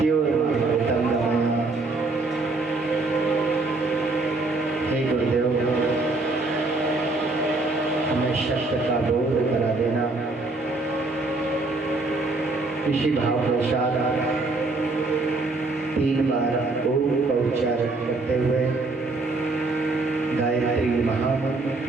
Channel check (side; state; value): left; quieter; 3.3 dB